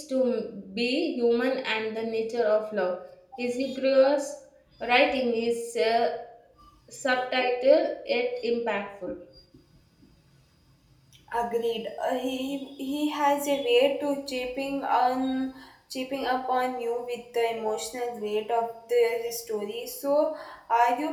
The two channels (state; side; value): identical; both; correlation 1.00